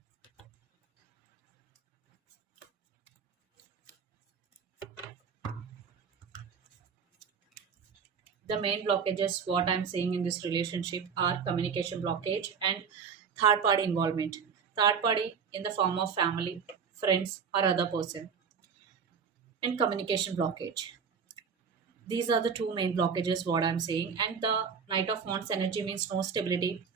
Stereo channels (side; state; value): left; quieter; 6.4 dB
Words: The main blockages what I'm seeing in this relationship are communication blockage and third party involvement. Third party in the form of family, friends, or other person, and communication blockage. These are the two main blockages what I'm saying. And the Knight of Wands energy means no stability.